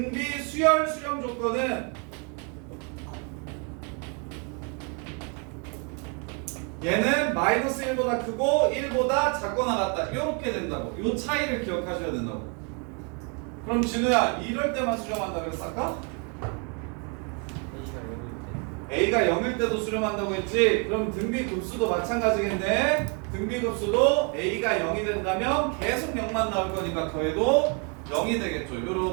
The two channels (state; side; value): quieter; left; 36.3 dB